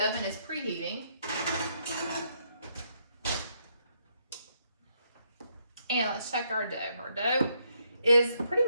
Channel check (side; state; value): both; inverted; correlation -0.75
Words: is preheating. And let's check our dough. Our dough is pretty